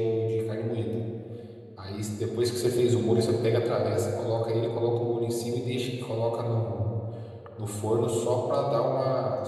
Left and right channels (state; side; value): identical; both; correlation 1.00